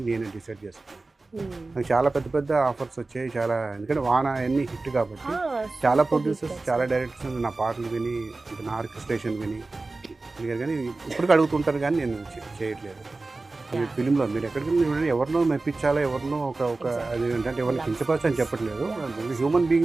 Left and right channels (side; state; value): left; quieter; 3.4 dB